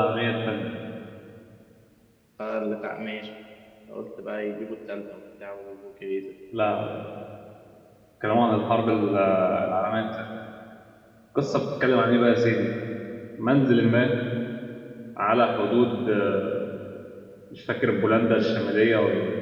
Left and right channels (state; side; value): identical; both; correlation 1.00